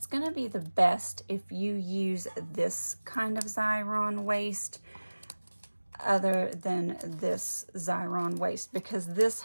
going to be the best if you use this kind of Xyron waste other than this Xyron waste, because this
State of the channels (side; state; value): both; inverted; correlation -1.00